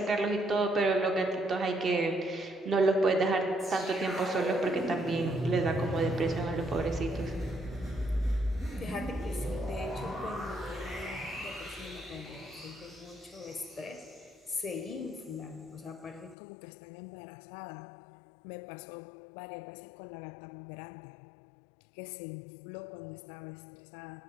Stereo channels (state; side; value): drops out; right; at 16.4 s